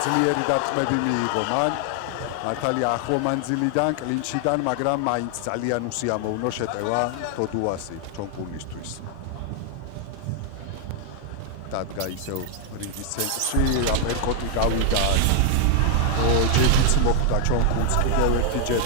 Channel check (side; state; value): both; different; correlation 0.00